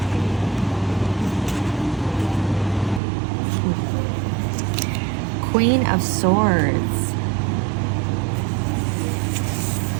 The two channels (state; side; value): drops out; left; at 3.0 s